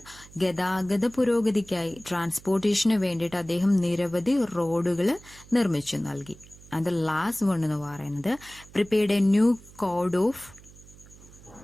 ഗതാഗത പുരോഗതിക്കായി, ട്രാൻസ്പോർട്ടേഷന് വേണ്ടിയിട്ട് അദ്ദേഹം നിരവധി റോഡുകൾ നിർമ്മിച്ചു നൽകി. ആൻഡ് ദ ലാസ്റ്റ് വൺ എന്ന് പറയുന്നത് prepared a new code of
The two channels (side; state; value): right; noise; hum, 21 dB below the sound